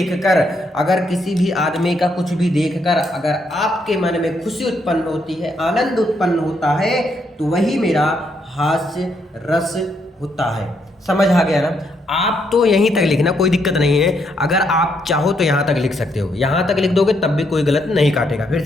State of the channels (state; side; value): normal; both; correlation 0.76